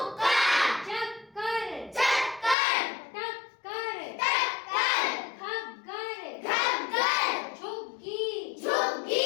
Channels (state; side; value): drops out; right; at 2.6 s